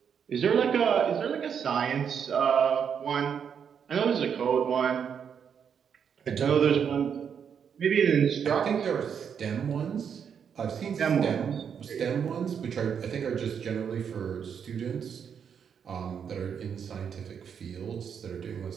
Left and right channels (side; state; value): left; quieter; 7.5 dB